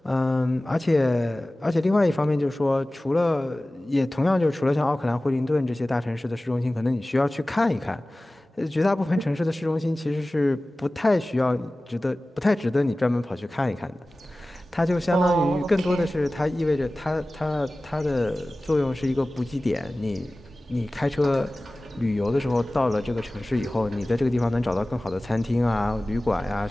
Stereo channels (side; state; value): both; normal; correlation 0.97